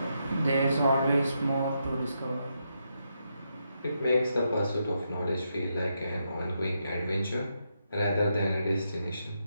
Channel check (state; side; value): inverted; both; correlation -0.82